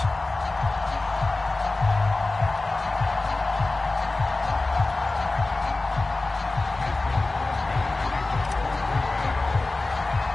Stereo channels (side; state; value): right; quieter; 3.2 dB